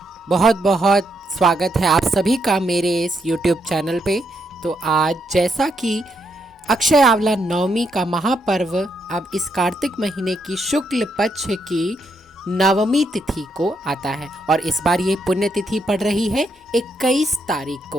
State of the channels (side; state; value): both; normal; correlation 0.78